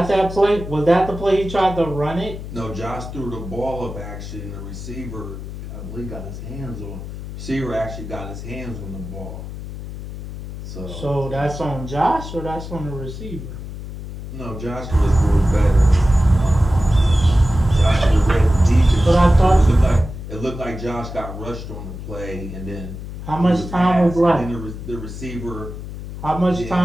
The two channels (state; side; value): noise; left; hum, 10 dB below the sound